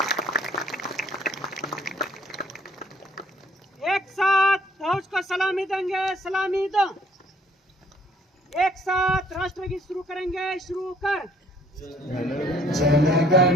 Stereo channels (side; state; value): both; normal; correlation 0.60